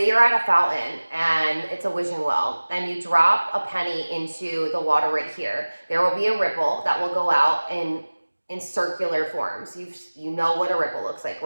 you're at a fountain and it's a wishing well, and you drop a penny into the water right here. There will be a ripple that will go out in circular forms. You know what a ripple looks like,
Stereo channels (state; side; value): inverted; both; correlation -1.00